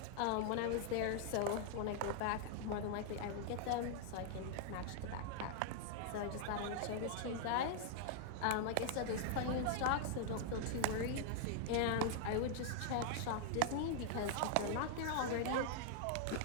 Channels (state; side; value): different; both; correlation -0.01